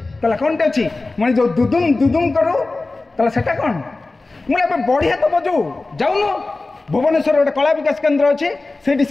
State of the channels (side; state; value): right; quieter; 3.3 dB